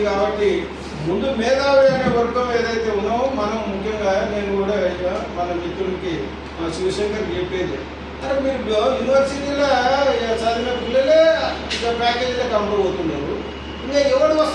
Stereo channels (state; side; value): identical; both; correlation 1.00